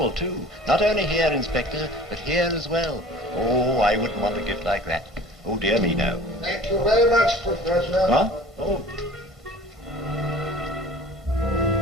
too. Not only here, Inspector, but here as well. Oh, I wouldn't want a gift like that. Oh, dear me, no. Thank you very much, Professor. What? Oh.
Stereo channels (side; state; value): both; normal; correlation 0.44